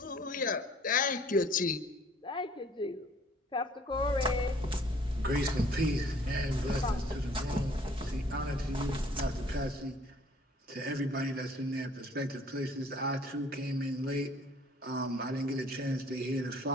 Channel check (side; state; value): both; normal; correlation 0.56